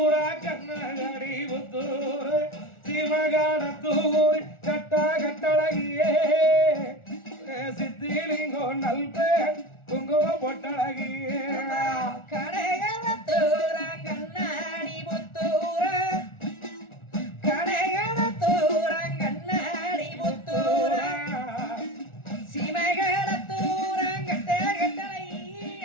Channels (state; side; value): late; right; 1.4 ms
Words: கண்ணாடி புத்தூரே சிவகாட தூரி கட்டா கட்டழகியே சித்திலிங்கோ நல்பே குங்கும பொட்டழகியே கடைகளத்தூர கண்ணாடி புத்தூர கடைகளத்தூர கண்ணாடி புத்தூர சீமைகளத்தூர கட்ட கட்டளை